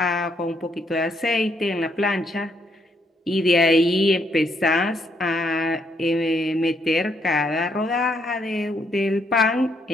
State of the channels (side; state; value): both; normal; correlation 0.73